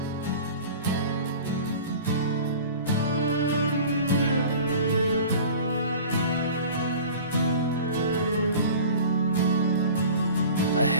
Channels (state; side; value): inverted; both; correlation -0.40